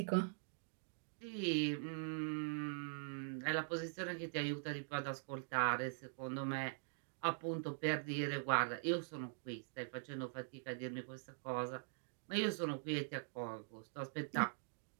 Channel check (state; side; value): silent; left; digital silence